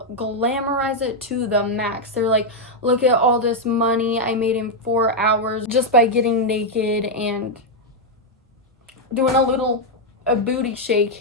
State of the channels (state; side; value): normal; both; correlation 0.00